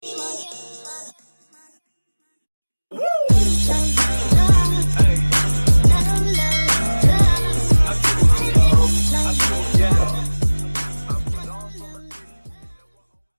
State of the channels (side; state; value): both; inverted; correlation -1.00